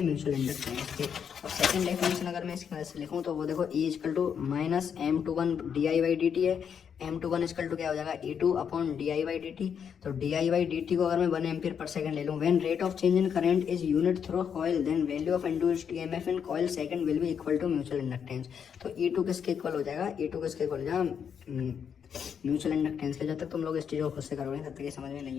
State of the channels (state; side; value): quieter; right; 7.5 dB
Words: म्यूचुअल इंडक्टेंस के। अब सेकंड डेफिनेशन अगर मैं इसकी मदद से लिखूँ तो वो देखो E equal to minus M21 DI/dt है। M21 इक्वल टू क्या हो जाएगा, E2 अपॉन DI/dt। तो DI/dt को अगर मैं 1 एम्पियर पर सेकंड ले लूँ, when rate of change in current is unit through coil then value of induced EMF in coil second will be equal to mutual inductance. तो E2 किसके equal हो जाएगा, E2 किसके इक्वल हो जाएगा, mutual inductance के। जब तक तुम लोग इस चीज़ को खुद से करोगे तब तक ये समझ में